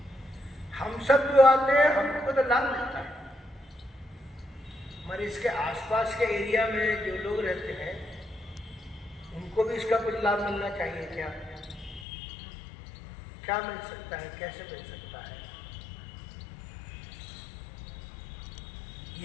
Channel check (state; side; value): drops out; right; at 12.1 s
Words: हम सब जो आते हैं हमको तो लाभ मिलता है, मगर इसके आसपास के एरिया में जो लोग रहते हैं उनको भी इसका कुछ लाभ मिलना चाहिए। क्या मिल सकता है, कैसे मिल सकता है?